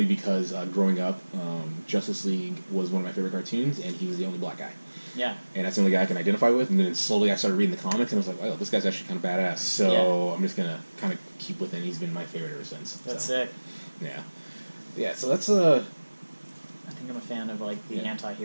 because growing up, Justice League was one of my favorite cartoons, and he was the only black guy. Yeah. And that's the only guy I can identify with. And then slowly I started reading the comics, and I was like, oh, this guy's actually kind of badass. So I'm just going to kind of keep with him. He's been my favorite ever since. That's sick. Yeah. Yeah, so that's I think I'm a fan of like the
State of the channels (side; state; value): both; inverted; correlation -1.00